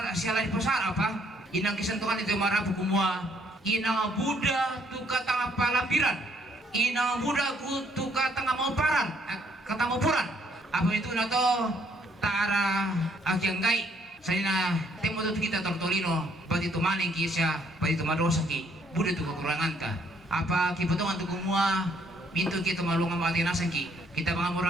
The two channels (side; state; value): both; normal; correlation 0.67